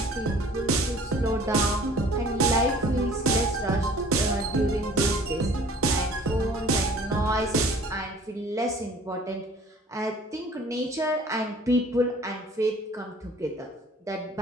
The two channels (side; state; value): both; normal; correlation 0.50